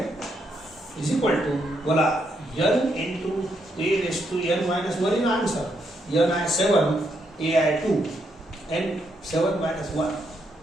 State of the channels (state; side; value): normal; both; correlation 0.77